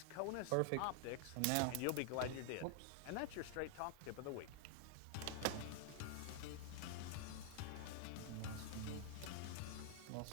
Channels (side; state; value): both; different; correlation 0.00